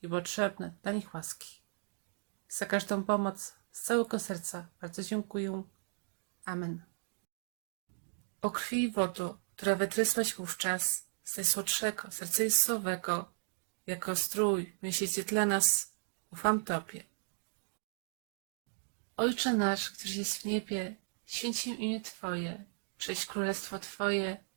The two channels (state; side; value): silent; left; digital silence